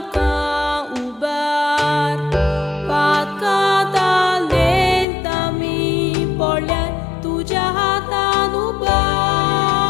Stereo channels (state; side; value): drops out; right; at 5.1 s